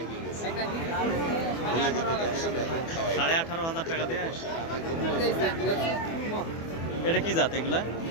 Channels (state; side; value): late; right; 24 ms